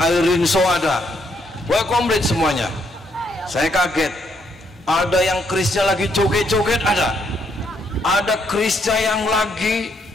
rinso ada. Wah, komplit semuanya. Saya kaget. Ada yang kerisnya lagi joget-joget ada. Ada kerisnya yang lagi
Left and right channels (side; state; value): both; normal; correlation 0.73